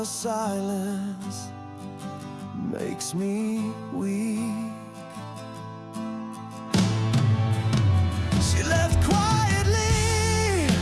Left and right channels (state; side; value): identical; both; correlation 1.00